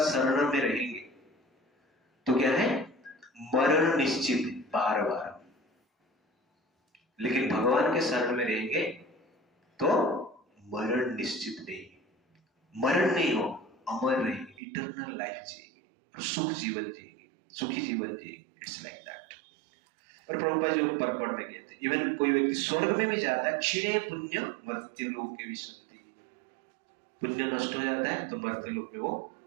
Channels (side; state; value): left; drops out; at 14.6 s